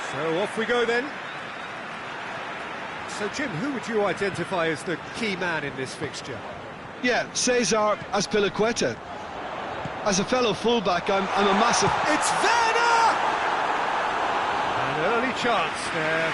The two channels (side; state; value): both; identical; correlation 1.00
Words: So off we go then. So Jim, who would you identify as the key man in this fixture? Yeah, Cesar Azpilicueta. As a fellow fullback, I'm a massive... It's Werner! An early chance there,